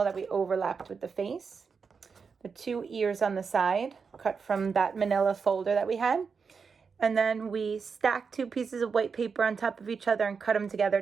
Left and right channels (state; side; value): quieter; left; 5.5 dB